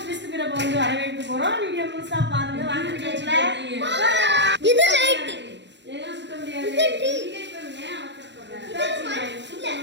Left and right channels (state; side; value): late; left; 0.52 ms